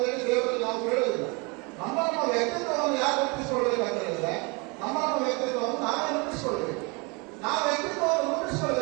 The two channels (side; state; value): left; quieter; 29.1 dB